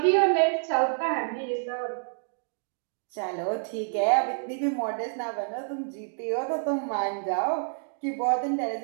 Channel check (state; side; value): silent; left; digital silence